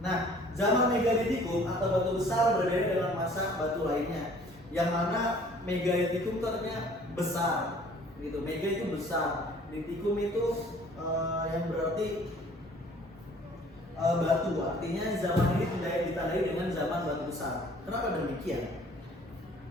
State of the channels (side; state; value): both; normal; correlation 0.54